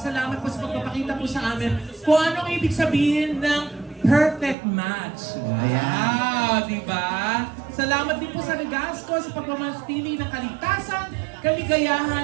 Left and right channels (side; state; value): left; drops out; at 4.5 s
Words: po sa pagpapakita po sa amin kung anong ibig sabihin ng perfect match. Wow, di ba? Salamat din po sa Regasco sa pagmamanatili ng kaligtasan,